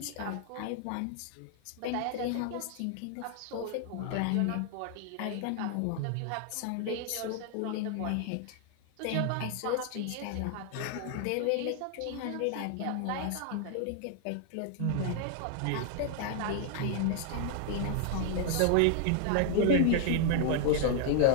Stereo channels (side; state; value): both; different; correlation 0.00